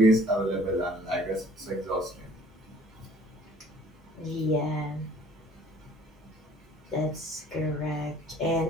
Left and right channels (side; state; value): both; normal; correlation 0.55